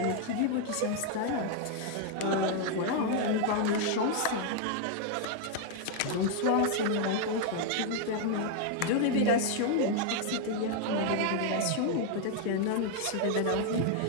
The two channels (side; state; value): both; different; correlation 0.00